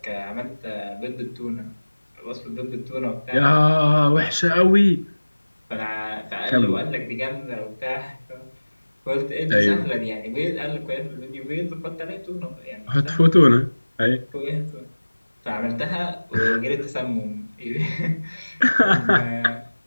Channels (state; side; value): inverted; both; correlation -1.00